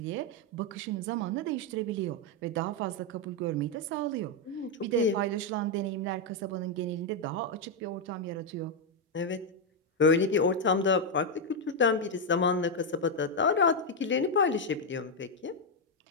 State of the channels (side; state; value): both; normal; correlation 0.02